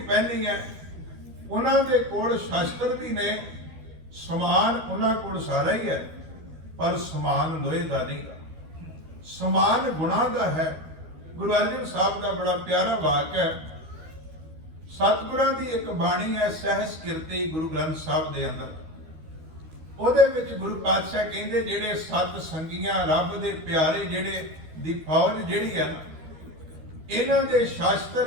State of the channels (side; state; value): left; late; 13 ms